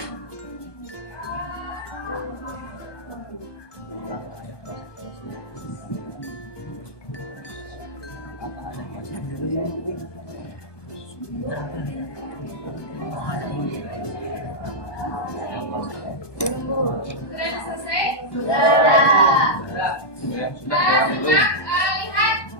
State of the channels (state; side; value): late; right; 1.2 ms